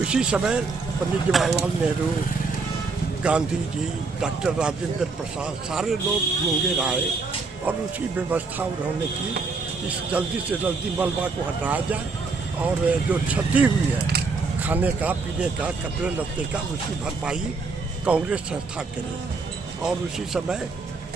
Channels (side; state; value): left; quieter; 4.2 dB